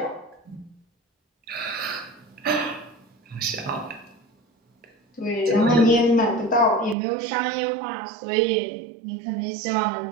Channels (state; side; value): drops out; left; at 7.0 s